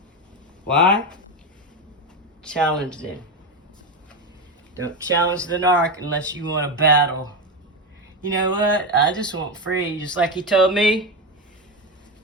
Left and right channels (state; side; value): normal; both; correlation 0.14